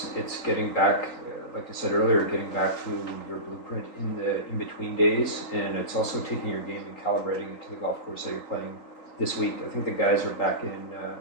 getting back, like I said earlier, getting back to your blueprint in between days, and it's also taking your game and calibrating it to the golf course that you're playing this week. I think the guys are back in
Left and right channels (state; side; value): late; right; 3.9 ms